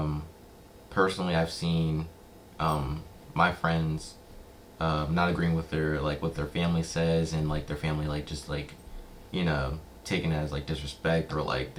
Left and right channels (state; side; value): identical; both; correlation 1.00